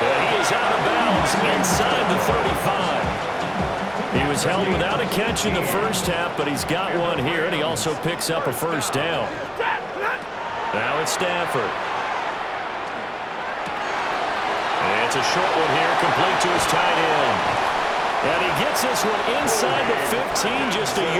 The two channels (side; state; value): both; identical; correlation 1.00